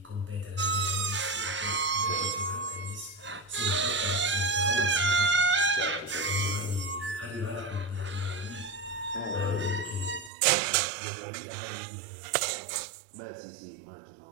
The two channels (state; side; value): drops out; left; at 10.3 s